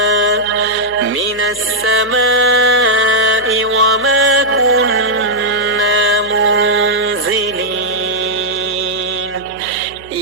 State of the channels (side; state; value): left; noise; hum, 22 dB below the sound